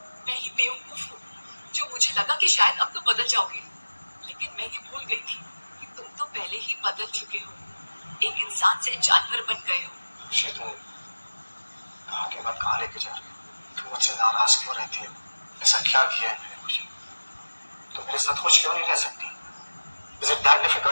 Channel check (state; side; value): inverted; both; correlation -1.00